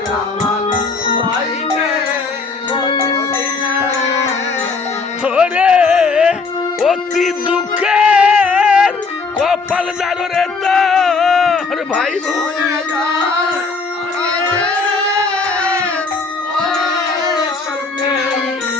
ওরে অতি দুঃখের কপাল জাগরে তোর ভাই বোন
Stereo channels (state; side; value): quieter; right; 4.3 dB